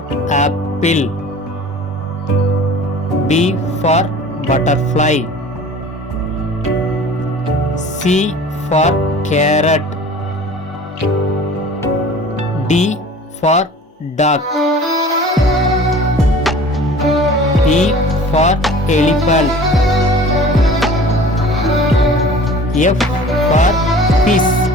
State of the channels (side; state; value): both; normal; correlation 0.44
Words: apple, B for butterfly, C for carrot, D for duck, E for elephant, F for fish,